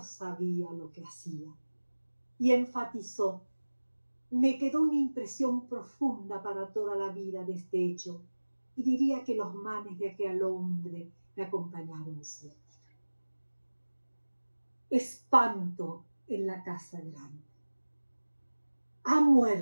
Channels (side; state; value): both; inverted; correlation -1.00